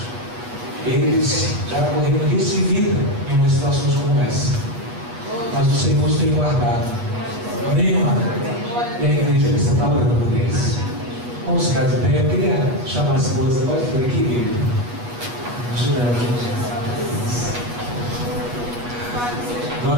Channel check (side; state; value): left; late; 8.3 ms